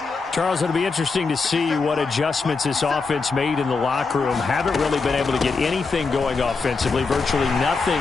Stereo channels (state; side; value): quieter; right; 4.4 dB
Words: Charles, it'll be interesting to see what adjustments this offense made in the locker room. Haven't really been able to get anything going offensively, virtually nothing